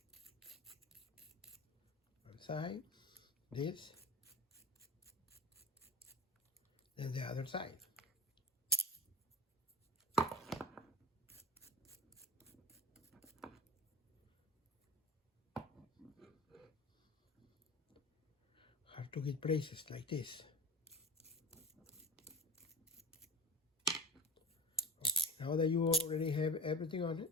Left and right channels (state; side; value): normal; both; correlation 0.32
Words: One side, this, then the other side. Hard to get places like this. Okay, now that you already have everything on it,